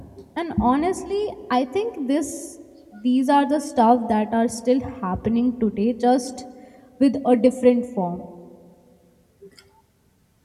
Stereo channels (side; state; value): both; identical; correlation 1.00